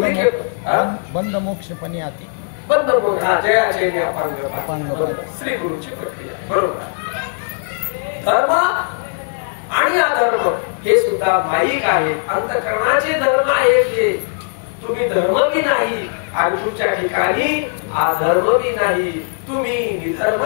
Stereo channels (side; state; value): right; silent; digital silence